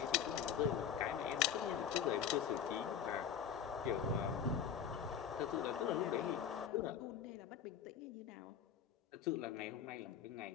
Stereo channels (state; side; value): quieter; right; 8.1 dB